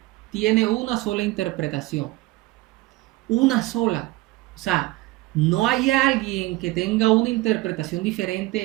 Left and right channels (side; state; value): left; quieter; 19.0 dB